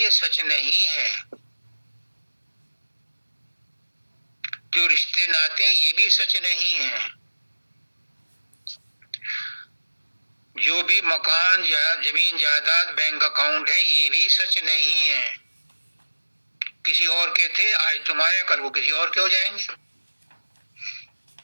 सच नहीं है। जो रिश्ते नाते ये भी सच नहीं है। जो भी मकान या जमीन जायदाद बैंक अकाउंट है ये भी सच नहीं है। किसी और के थे, आज तुम्हारे, कल को किसी और के हो जाएंगे।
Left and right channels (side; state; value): both; inverted; correlation -1.00